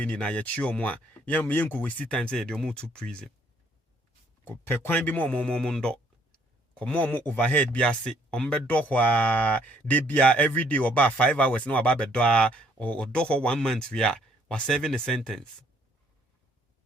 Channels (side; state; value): both; normal; correlation 0.65